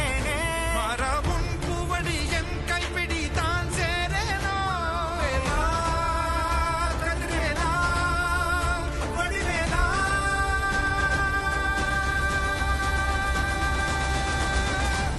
மாறாவும் பூவடி என் கைப்பிடி தான் சேரேனோ கதிரேலா வடிவேலா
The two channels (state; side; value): identical; both; correlation 1.00